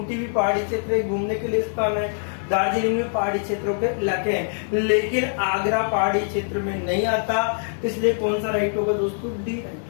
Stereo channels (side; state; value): right; silent; digital silence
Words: भी पहाड़ी क्षेत्र है, घूमने के लिए स्थान है। दार्जिलिंग में पहाड़ी क्षेत्रों के इलाके हैं, लेकिन आगरा पहाड़ी क्षेत्र में नहीं आता, इसलिए कौन सा राइट होगा दोस्तों, डी राइट